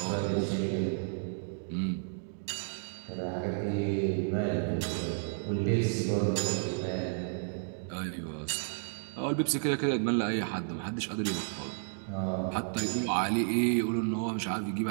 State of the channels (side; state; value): left; silent; digital silence